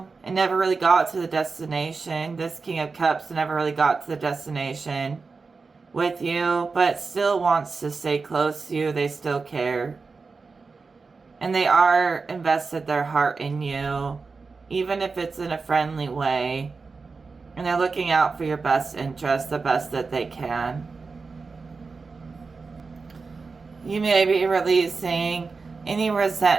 it never really got to the destination. This King of Cups never really got to the destination with you, but still wants to stay close to you. They still care. And they are invested their heart in you, even if it's in a friendly way. And they're looking out for your best interest, the best that they can. You may be releasing any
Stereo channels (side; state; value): left; quieter; 4.4 dB